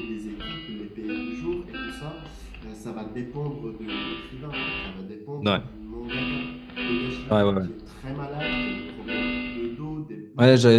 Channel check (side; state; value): both; identical; correlation 1.00